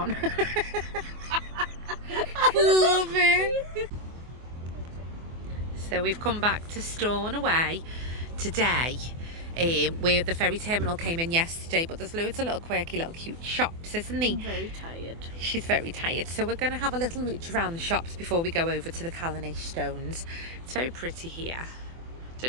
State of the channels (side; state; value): left; late; 24 ms